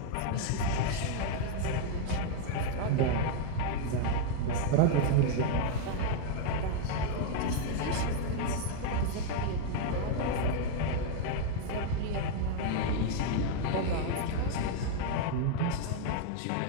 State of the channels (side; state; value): both; different; correlation 0.00